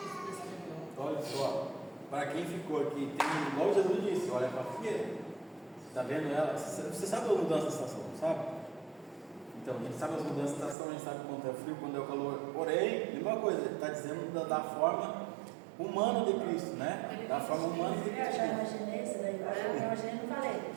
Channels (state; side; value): drops out; left; at 10.8 s